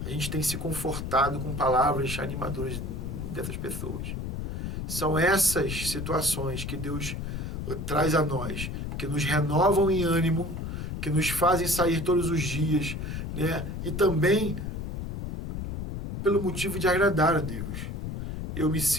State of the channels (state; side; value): noise; left; rumble, 5 dB below the sound